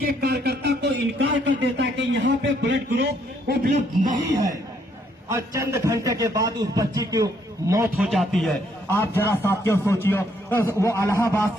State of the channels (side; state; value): both; normal; correlation 0.70